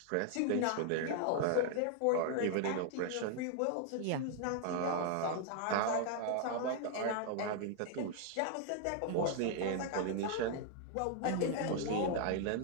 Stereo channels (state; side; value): different; both; correlation 0.00